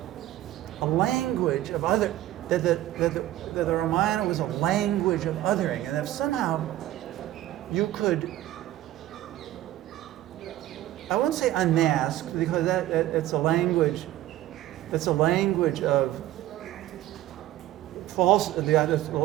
a language of other, that the Ramayana was a language of othering, and if somehow you could, I won't say unmask, because that's a language of false, the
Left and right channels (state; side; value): quieter; left; 14.1 dB